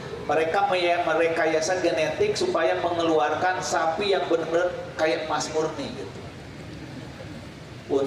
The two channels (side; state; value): both; identical; correlation 1.00